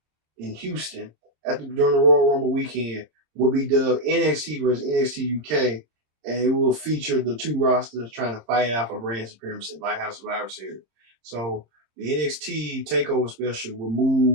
in Houston during the Royal Rumble weekend will be dubbed NXT versus NXT UK, and it will feature the two rosters trying to fight out for brand supremacy, like House Survivor Series. So the NXT TakeOver special will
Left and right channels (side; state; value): left; late; 26 ms